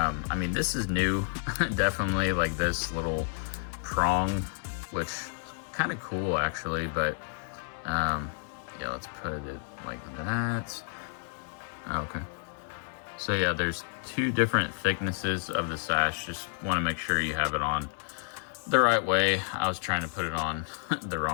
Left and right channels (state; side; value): silent; right; digital silence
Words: mean, this is new, definitely, like this little prong, which is kind of cool actually, but yeah, let's put it like that. Okay. So yeah, there's two different thicknesses of the sash. Just want to make sure you have it on the right way. I was trying to put it on the